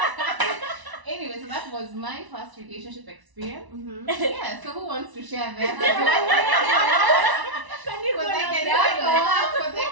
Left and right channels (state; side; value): late; left; 1.0 ms